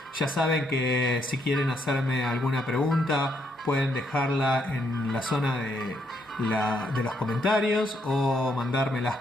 Ya saben que si quieren hacerme alguna pregunta pueden dejarla en la zona de los comentarios o mandármelas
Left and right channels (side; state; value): both; normal; correlation 0.74